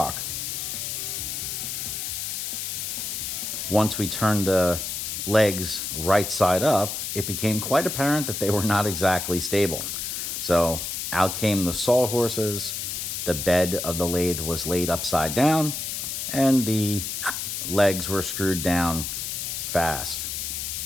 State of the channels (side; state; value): left; noise; hiss, 4 dB below the sound